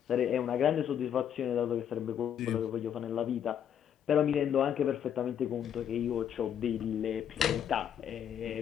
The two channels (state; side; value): quieter; right; 9.2 dB